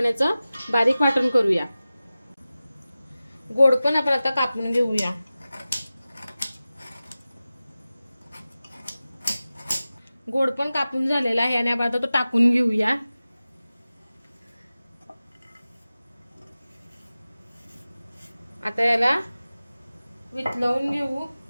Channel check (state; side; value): inverted; both; correlation -0.96